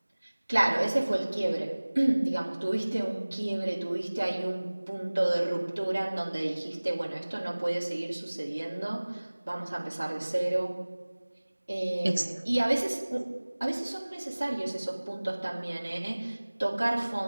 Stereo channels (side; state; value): both; inverted; correlation -1.00